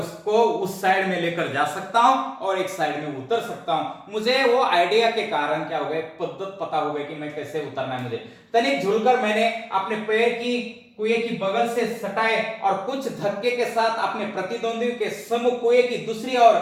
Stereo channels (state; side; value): identical; both; correlation 1.00